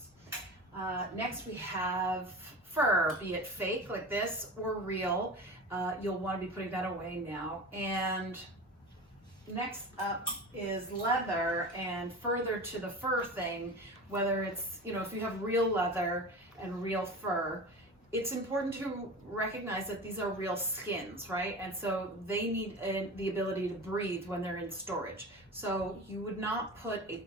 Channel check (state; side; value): normal; both; correlation 0.32